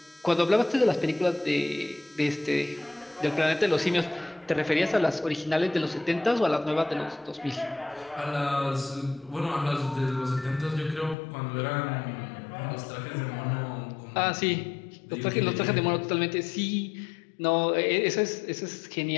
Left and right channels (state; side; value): drops out; right; at 11.2 s